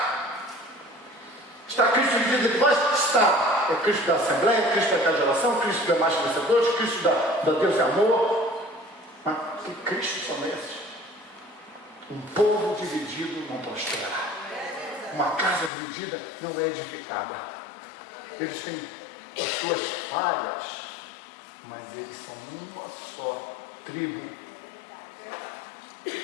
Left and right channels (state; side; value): drops out; right; at 15.7 s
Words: Está Cristo dividido entre vós? Está. É Cristo da Assembleia, Cristo da Casa de Oração, Cristo da Mais Vencedores, Cristo da Deus é Amor. Mas que Cristo são esses? Um povo dividido não prospera. Uma casa dividida não é edificada. Eles têm as suas falhas, mas eles são uma só tribo.